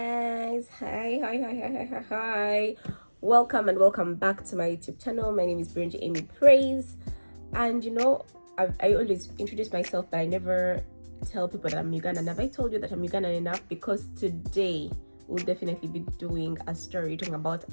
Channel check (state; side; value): inverted; both; correlation -1.00